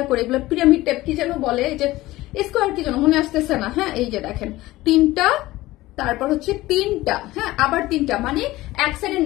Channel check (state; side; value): quieter; right; 17.8 dB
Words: করে, এগুলো পিরামিড টাইপ কি যেন বলে, এই যে স্কোয়ার কি যেন মনে আসতেছে না। হ্যাঁ, এই যে দেখেন তিনটা, তারপর হচ্ছে তিনটা, হ্যাঁ আবার তিনটা, মানে এক সাইডে